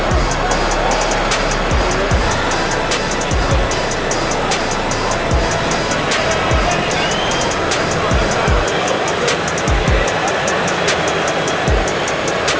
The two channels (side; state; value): both; identical; correlation 1.00